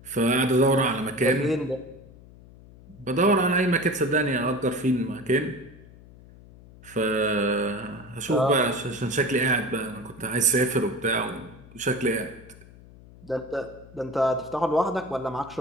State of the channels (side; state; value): left; noise; hum, 21 dB below the sound